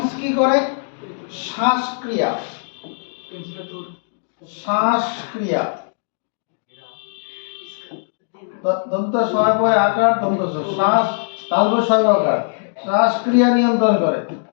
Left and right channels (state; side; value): silent; right; digital silence